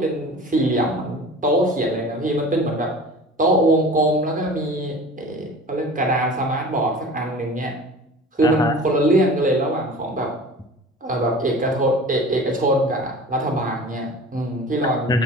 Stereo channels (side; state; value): both; normal; correlation 0.40